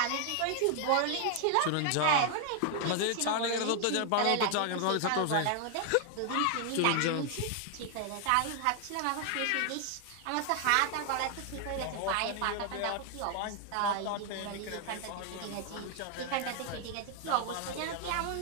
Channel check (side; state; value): both; different; correlation 0.00